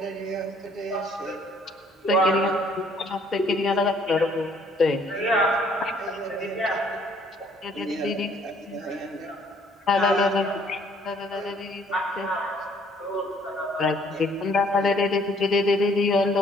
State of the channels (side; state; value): both; normal; correlation 0.61